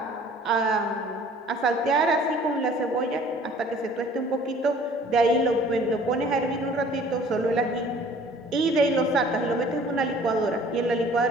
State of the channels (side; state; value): both; normal; correlation 0.52